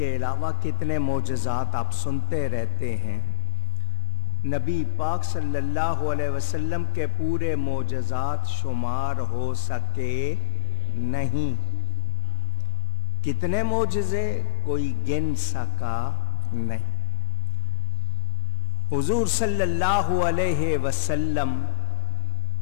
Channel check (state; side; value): silent; right; digital silence